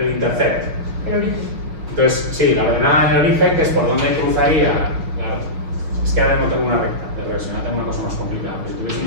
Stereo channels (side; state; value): left; late; 6.1 ms